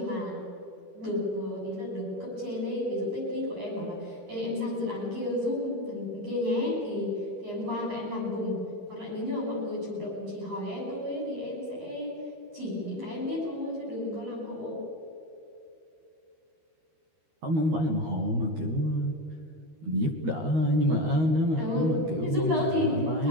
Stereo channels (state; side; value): late; left; 13 ms